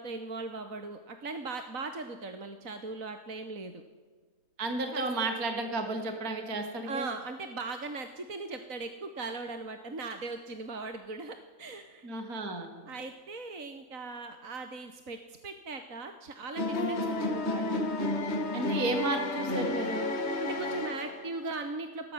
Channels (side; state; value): left; late; 3.9 ms